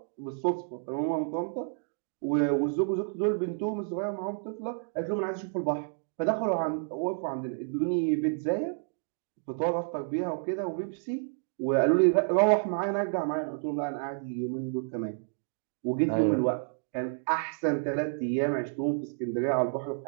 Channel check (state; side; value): silent; left; digital silence